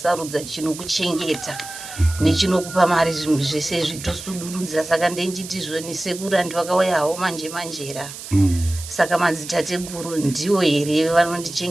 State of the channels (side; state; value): right; noise; hiss, 12 dB below the sound